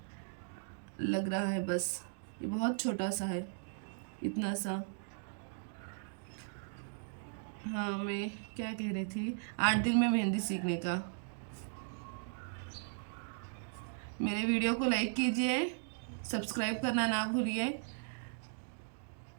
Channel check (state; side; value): silent; left; digital silence